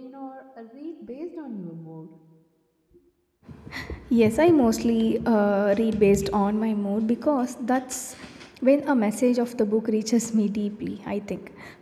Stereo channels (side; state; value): both; identical; correlation 1.00